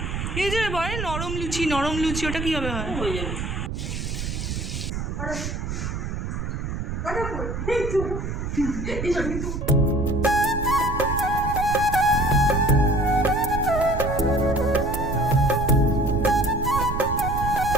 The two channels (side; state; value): right; noise; rumble, 4 dB below the sound